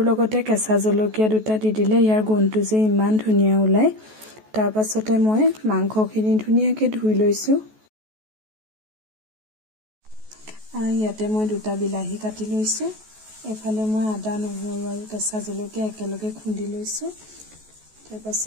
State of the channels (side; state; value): left; late; 14 ms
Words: লগতে কেঁচা জলকীয়া 2টা দি দিলে ইয়াৰ গোন্ধটো যে ইমান ধুনীয়া ওলায়। তাৰ পাছতে মই মাংসখিনি ধুনীয়াকৈ ধুই লৈছোঁ। ইয়াতে মই 2টা বিলাহী কাটি লৈছোঁ। এফালে মই আদা নহৰু আৰু কেঁচা জলকীয়া একেলগে খুন্দি লৈছোঁ। তাৰ